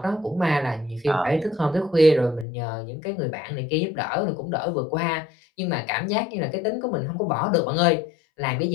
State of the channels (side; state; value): right; drops out; at 2.5 s